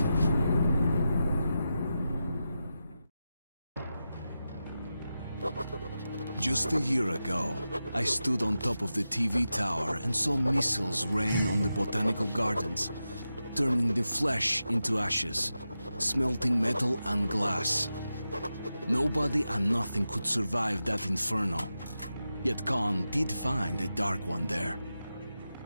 Just a year ago, I stood on top of the TV tower and saw missiles rain on the botanical gardens, turning the flesh into ashes, smelting metal and glass. Nobody and nothing could survive that inferno. Yet Khan did find a Dark One there.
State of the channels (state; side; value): inverted; both; correlation -0.91